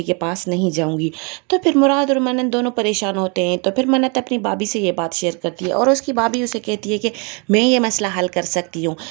के पास नहीं जाऊंगी। तो फिर मुराद और मन्नत दोनों परेशान होते हैं। तो फिर मन्नत अपनी भाभी से ये बात शेयर करती है और उसकी भाभी उसे कहती है कि मैं ये मसला हल कर सकती हूँ।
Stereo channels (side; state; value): left; quieter; 33.3 dB